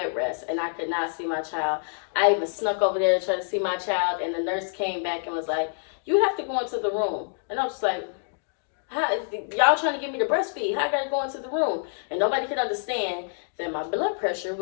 rest, and I could not see my child. I even snuck over there to try to see my child, and the nurse came back and was like, you have to go into the room. And I was just like, how, y'all trying to get me to breastfeed? How I got to go into the room? And nobody could understand that my blood pressure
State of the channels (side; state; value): right; silent; digital silence